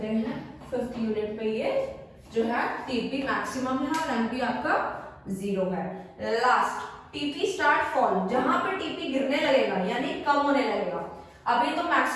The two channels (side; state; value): both; identical; correlation 1.00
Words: हैं। 5th यूनिट पे ये जो है टीपी मैक्सिमम है और एमपी आपका 0 है। लास्ट टीपी स्टार्ट फॉल, जहां पे टीपी गिरने लगेगा यानी कम होने लगेगा। अभी तो